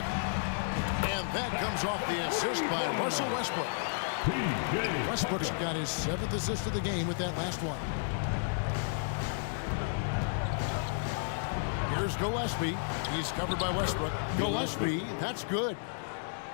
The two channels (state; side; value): silent; right; digital silence